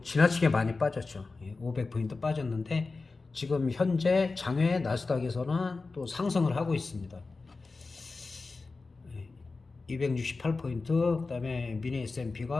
지나치게 많이 빠졌죠. 500포인트 빠졌는데 지금 현재 장외 나스닥에서는 또 상승을 하고 있습니다. 268포인트, 그다음에 미니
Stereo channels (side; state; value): right; quieter; 3.9 dB